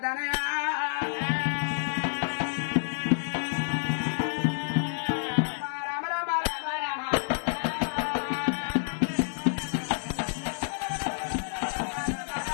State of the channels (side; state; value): right; silent; digital silence